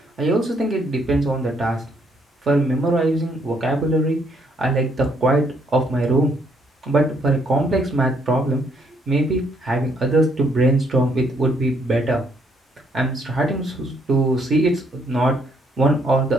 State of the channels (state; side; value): normal; both; correlation 0.70